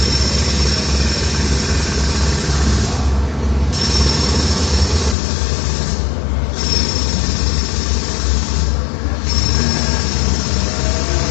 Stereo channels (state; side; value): drops out; right; at 5.2 s